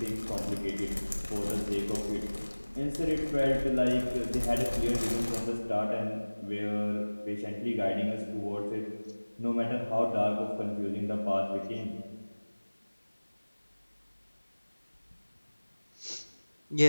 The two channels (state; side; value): inverted; both; correlation -1.00